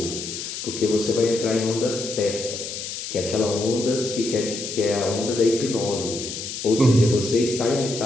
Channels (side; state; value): left; noise; hiss, 7 dB below the sound